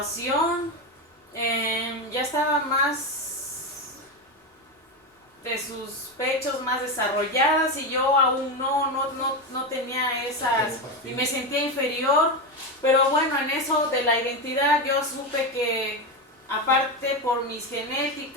ya estaba más de sus pechos más desarrolladas y yo aún no tenía esas y me sentía inferior, pero bueno, en eso de la identidad yo supe que aparte por mis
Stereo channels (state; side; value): normal; both; correlation 0.14